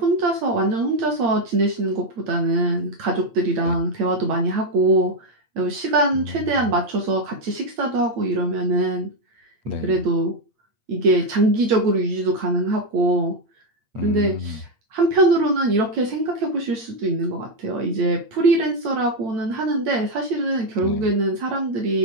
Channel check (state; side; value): late; left; 8.6 ms